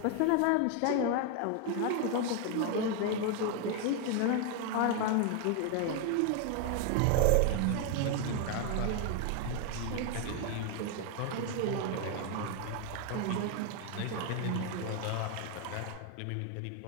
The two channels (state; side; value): different; both; correlation 0.01